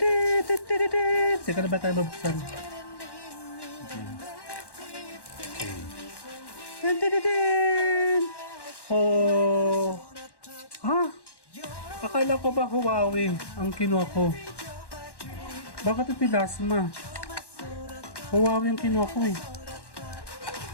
Teka na ba tayo mabuksan? Oh! Ha? Akala ko ba Huawei ang kinuha ko? Bakit ito Lasma? Huawei ang kinuha ko eh.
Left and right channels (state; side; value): late; right; 1.1 ms